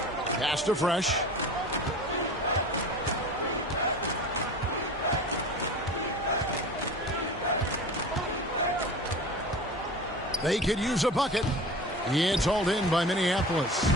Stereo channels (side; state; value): both; normal; correlation 0.36